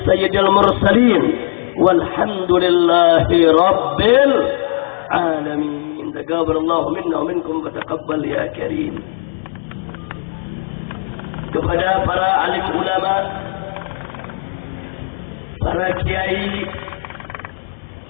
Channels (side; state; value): right; silent; digital silence